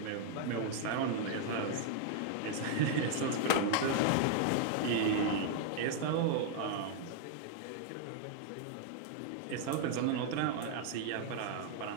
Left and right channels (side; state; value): both; different; correlation 0.00